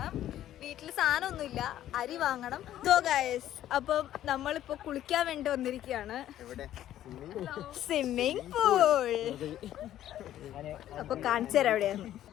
വീട്ടില് സാധനമൊന്നുമില്ല, അരി വാങ്ങണം. സോ ഗൈസ്, അപ്പം നമ്മളിപ്പോ കുളിക്കാൻ വേണ്ടി വന്നിരിക്കുകയാണ്. Swimming pool. അപ്പൊ കാണിച്ചു തരാം എവിടെയാണ്.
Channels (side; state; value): right; quieter; 12.3 dB